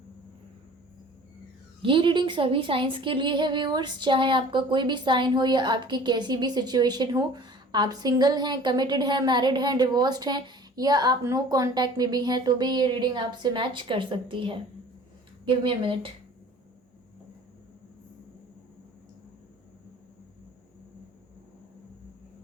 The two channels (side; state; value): both; normal; correlation 0.47